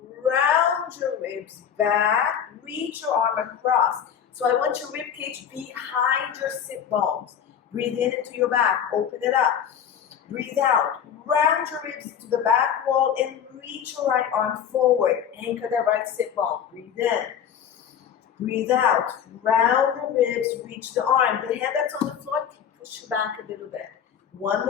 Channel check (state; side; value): quieter; right; 8.5 dB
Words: round your ribs back, reach your arm across. So I want your rib cage behind your sit bones. Breathe in into your back, open it up. Breathe out, round your ribs to the back wall and reach your right arm forward. Anchor that right sit bone. Breathe in. Breathe out, round the ribs, reach the arm. The hand that's on the floor, push you back a little bit. One